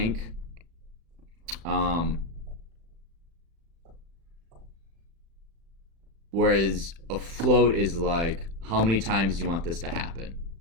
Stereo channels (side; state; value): left; late; 36 ms